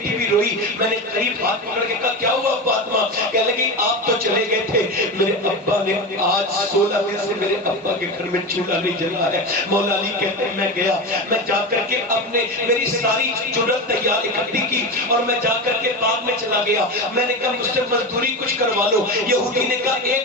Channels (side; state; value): both; normal; correlation 0.21